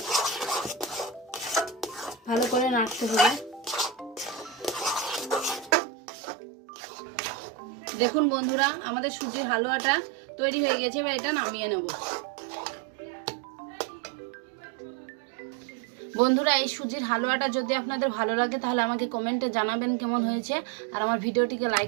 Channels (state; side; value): drops out; left; at 5.8 s